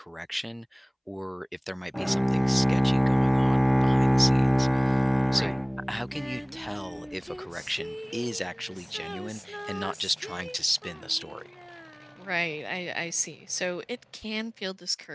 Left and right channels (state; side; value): identical; both; correlation 1.00